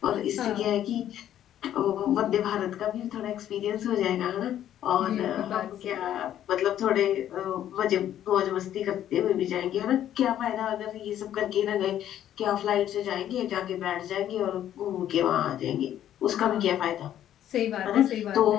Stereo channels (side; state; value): right; quieter; 11.3 dB